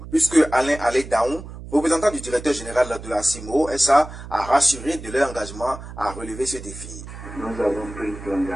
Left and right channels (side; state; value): right; noise; hum, 13 dB below the sound